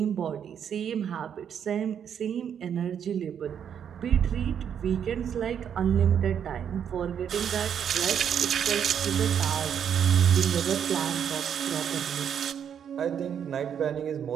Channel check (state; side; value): quieter; left; 8.4 dB